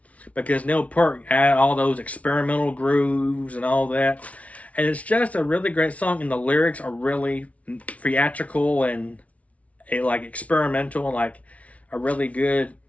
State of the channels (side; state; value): right; late; 0.066 ms